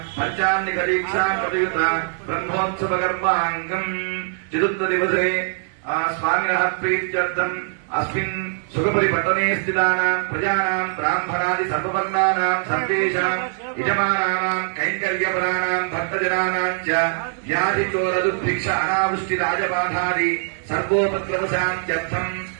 पंचान्निक दीक्षा प्रयुत ब्रह्मोत्सव कर्मांगम् चतुर्थ दिवसे स्वामिनः प्रीत्यर्थम् अस्मिन् सुखपुरीपट्टने स्थितानाम् प्रजानाम् ब्राह्मणादि सर्ववर्णानाम् सर्वेषाम् यजमानानाम् कैङ्कर्यपराणाम् भक्तजनानाम् च व्याधिचोरदुर्भिक्ष अनावृष्टि राजबाधादि सर्वोपद्रवशान्त्यर्थम्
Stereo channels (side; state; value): left; silent; digital silence